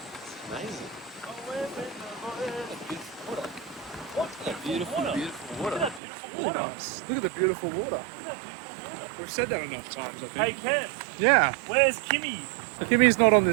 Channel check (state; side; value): drops out; left; at 6.0 s